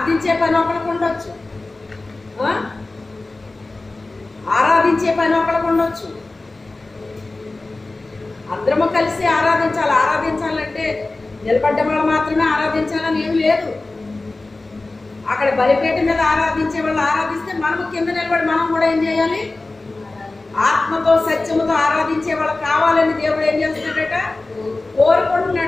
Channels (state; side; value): quieter; right; 3.2 dB